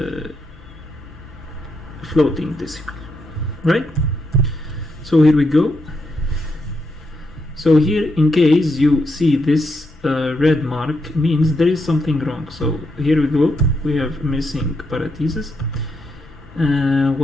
floating decimal, right? So here we go. So here, in case you see this red mark, means there is something wrong. So here we go, we have missing parentheses.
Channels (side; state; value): both; normal; correlation 0.80